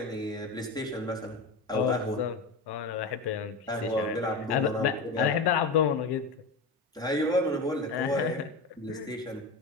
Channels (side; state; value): right; quieter; 3.7 dB